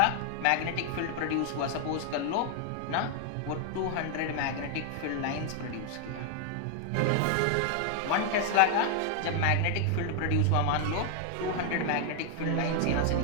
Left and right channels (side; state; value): both; different; correlation 0.00